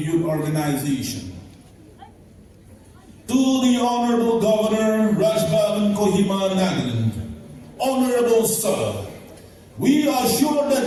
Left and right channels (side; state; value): both; identical; correlation 1.00